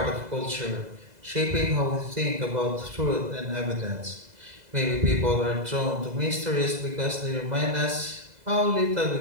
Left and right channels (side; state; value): left; late; 2.0 ms